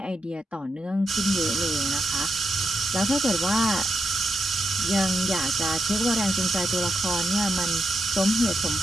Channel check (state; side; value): normal; both; correlation 0.84